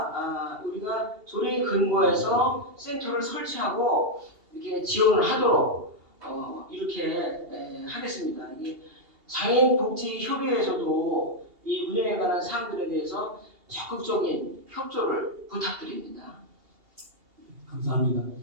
우리가 조례에 근거해서 센터를 설치하고 이렇게 지원을 하도록 이렇게 하겠습니다. 이게 장애인 복지 협의회에서도 이 운영에 관한 사항들에 대해서 적극적인 협조를 부탁드립니다. 감사합니다.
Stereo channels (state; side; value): late; left; 2.8 ms